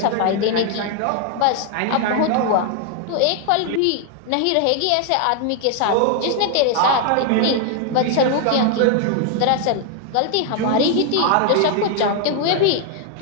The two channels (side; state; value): both; different; correlation 0.00